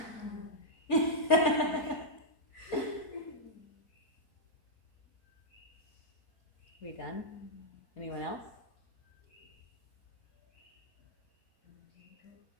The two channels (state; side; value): late; right; 4.3 ms